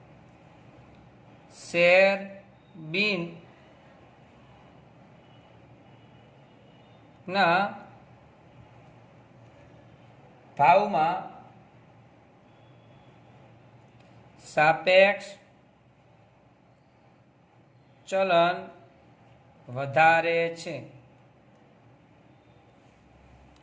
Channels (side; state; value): both; identical; correlation 1.00